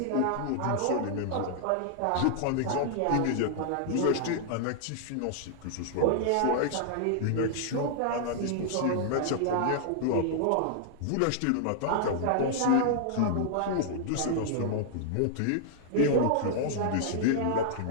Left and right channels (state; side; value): different; both; correlation -0.01